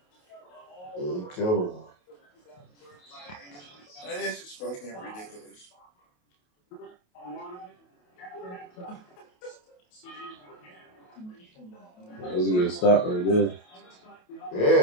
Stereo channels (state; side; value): late; right; 28 ms